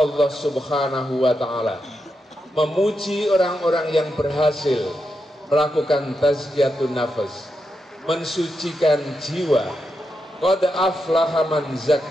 Subhanahu wa Ta'ala memuji orang-orang yang berhasil melakukan tazkiyatun nafas, mensucikan jiwa. Qad aflaha man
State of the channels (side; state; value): both; normal; correlation 0.86